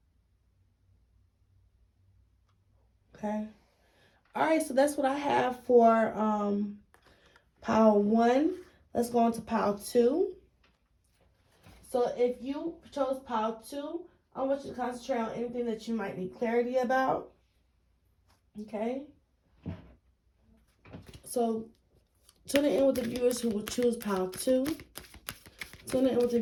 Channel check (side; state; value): both; identical; correlation 1.00